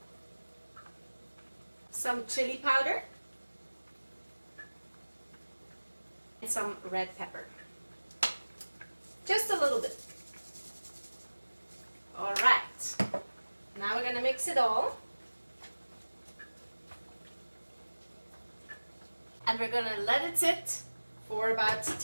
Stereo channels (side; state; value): both; inverted; correlation -1.00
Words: some chili powder, and some red pepper. Just a little bit. All right. Now we're going to mix it all. And we're going to let it sit for about